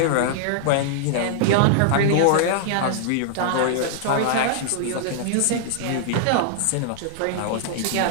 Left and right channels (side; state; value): both; different; correlation -0.01